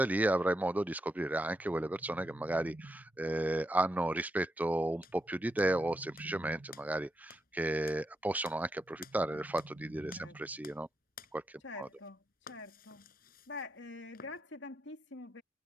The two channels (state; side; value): normal; both; correlation 0.84